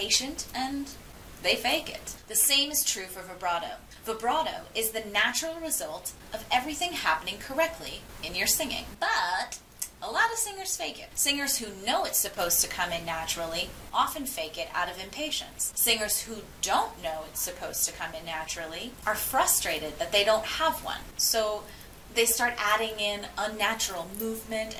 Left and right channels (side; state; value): both; identical; correlation 1.00